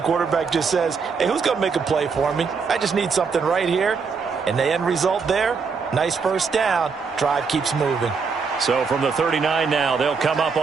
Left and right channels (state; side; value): quieter; left; 5.3 dB